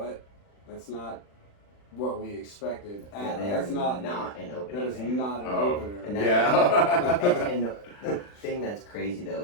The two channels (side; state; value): right; late; 40 ms